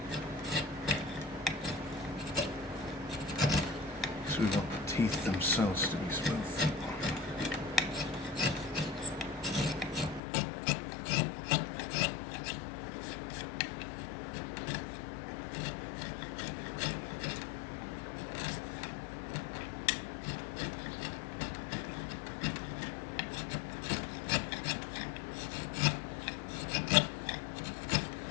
So we want the teeth themselves to be smooth.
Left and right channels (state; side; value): drops out; right; at 10.2 s